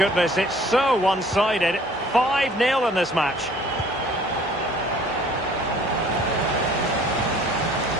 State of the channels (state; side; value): normal; both; correlation 0.54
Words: it's so one-sided. 5-0 in this match.